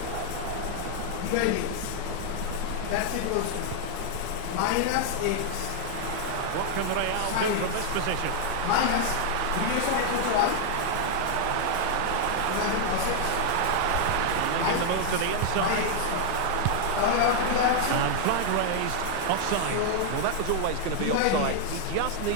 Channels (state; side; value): different; both; correlation 0.00